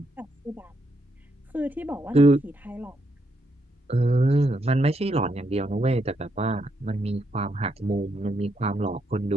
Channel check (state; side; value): normal; both; correlation 0.78